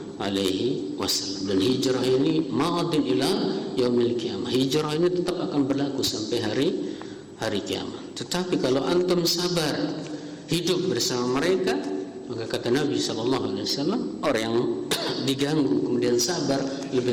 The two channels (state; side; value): identical; both; correlation 1.00